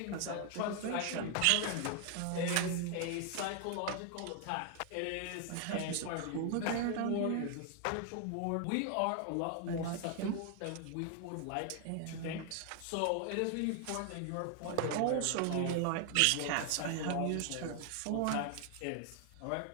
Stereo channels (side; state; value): both; different; correlation 0.00